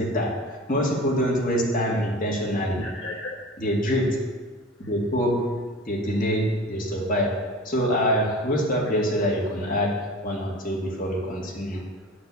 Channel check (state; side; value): normal; both; correlation 0.37